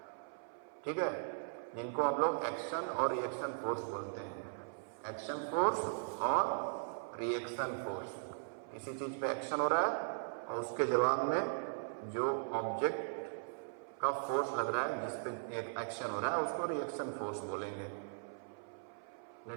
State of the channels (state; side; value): silent; left; 52 dB below the other